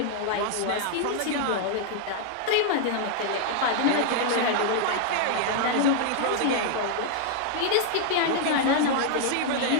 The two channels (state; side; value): different; both; correlation 0.00